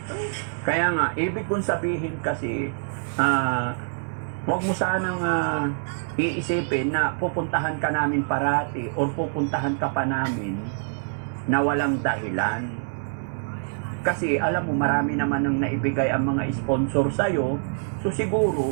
kaya nga, ibig kong sabihin kasi, huwag mo sanang iisipin na pupuntahan ka namin parati or pupuntahan ka pa namin na walang dahilan. Kasi alam mo, marami naman ang naibigay ang mga sponsor sa'yo, so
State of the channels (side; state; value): left; silent; digital silence